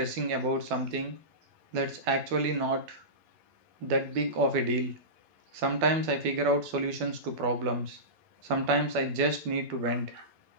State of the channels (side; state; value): left; late; 12 ms